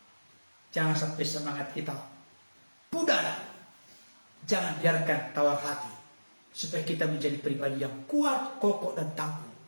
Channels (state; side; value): inverted; both; correlation -1.00